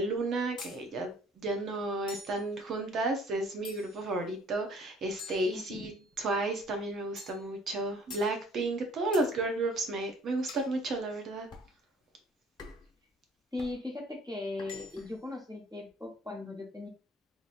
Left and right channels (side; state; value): both; normal; correlation 0.55